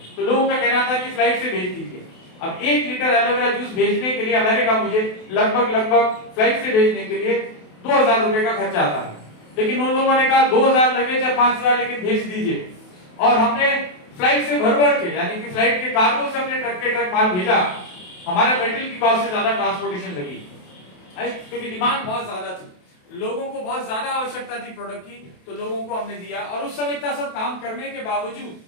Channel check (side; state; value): right; late; 28 ms